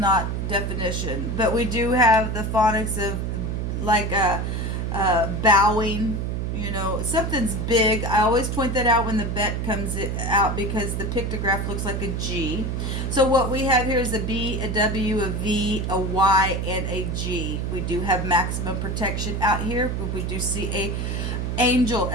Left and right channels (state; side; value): noise; right; hum, 2 dB below the sound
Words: definition. But we do have the phonics of like bowing, something's big. I always point that out when the bet comes out because the pictograph looks like a G. So what we have here is a B, a W, a V, a Y, and a G. We do have maximum protection out here, but we do see a angel